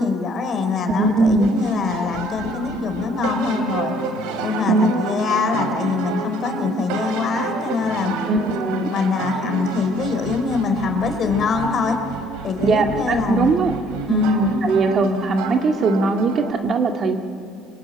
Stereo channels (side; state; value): both; normal; correlation 0.60